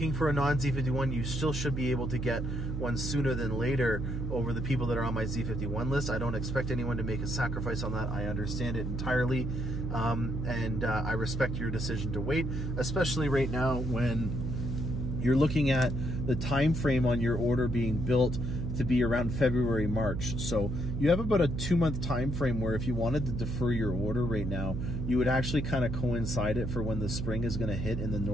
for a non-Z51, you still should be able to get one sooner than later over the people that are on my Z51 list. I don't expect anyone to make a sacrifice on that. I understand it entirely, and I respect your decision to wait, especially right now when you're looking at the time frame on your order being built to be around February, March. So you have about a 2-month time frame where if you wanted to defer your order right now, you would actually kind of coincide it for when the spring is going to hit in the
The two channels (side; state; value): right; noise; hum, 3 dB below the sound